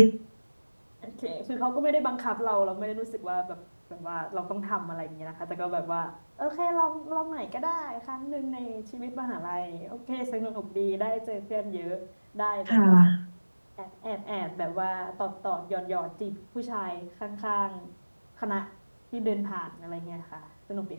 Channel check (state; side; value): inverted; both; correlation -1.00